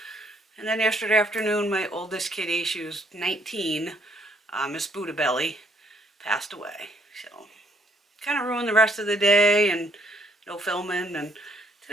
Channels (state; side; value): normal; both; correlation 0.67